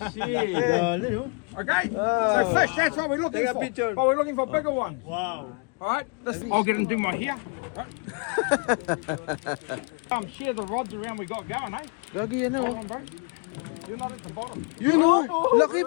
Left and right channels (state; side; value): quieter; right; 34.7 dB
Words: oh. Okay? So fish, that's what we're looking Take a for. picture. But we're looking for bigger ones. Wow. Alright? I'll get and do my hair. Right. Share the rods around we got going, eh? Lagi yan oh. Come on, bro. You're not at the bottom. Yun oh, laki